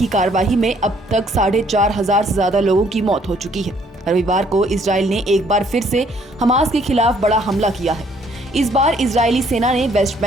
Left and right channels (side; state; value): both; normal; correlation 0.64